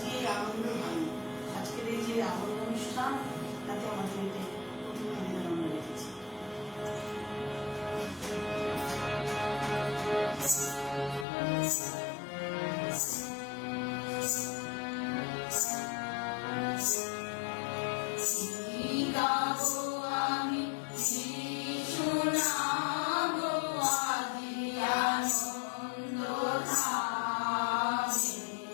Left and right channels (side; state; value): right; drops out; at 11.2 s